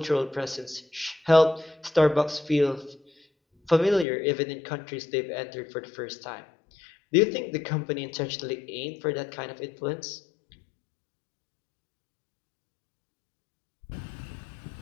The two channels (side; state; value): right; drops out; at 4.0 s